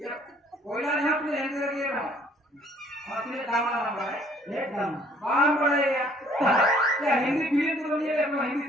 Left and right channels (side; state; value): both; normal; correlation 0.60